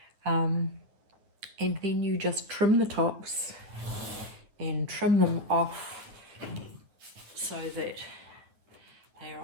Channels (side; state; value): left; late; 9.7 ms